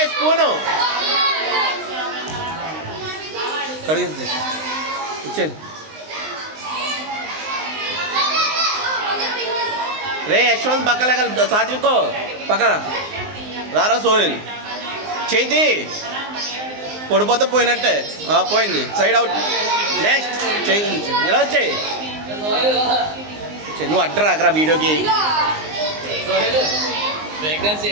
స్పూను కడిగి ఇచ్చాను రే. యశ్వంత్ పక్కన సాత్వికో పక్కన రారా. సోహిల్ చేతి పడిపోతే పోయినట్టే. పోయింది, సైడ్ అవుట్. నెక్స్ట్ చేయి ఇలా వచ్చాయి. నువ్వు అడ్డరా అక్కడ వీడియోకి.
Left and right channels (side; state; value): left; late; 19 ms